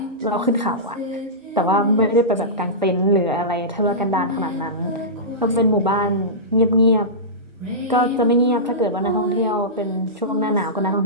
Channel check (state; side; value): normal; both; correlation -0.18